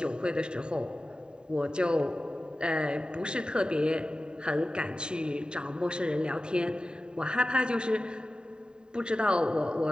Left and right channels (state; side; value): late; left; 0.048 ms